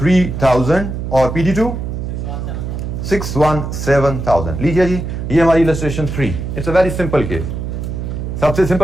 और PD2 617,000। लीजिए जी, ये हमारी illustration 3। It's a very simple case, सबसे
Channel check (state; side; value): noise; right; hum, 5 dB below the sound